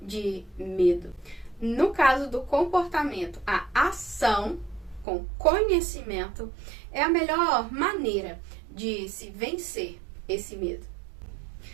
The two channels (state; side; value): drops out; left; at 5.1 s